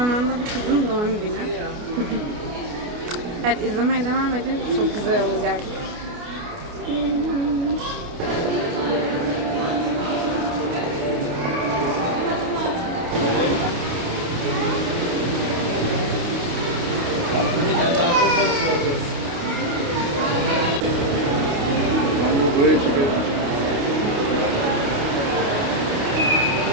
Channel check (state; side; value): late; left; 29 ms